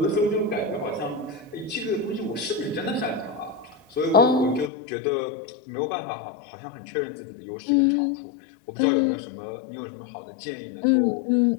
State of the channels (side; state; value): right; drops out; at 4.7 s